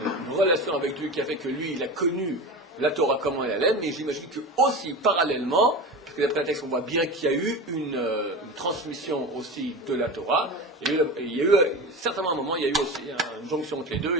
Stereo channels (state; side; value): normal; both; correlation 0.28